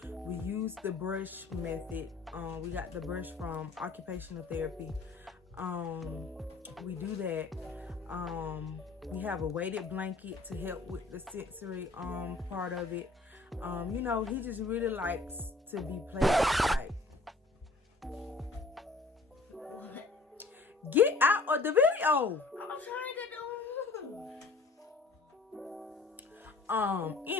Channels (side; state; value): right; quieter; 3.6 dB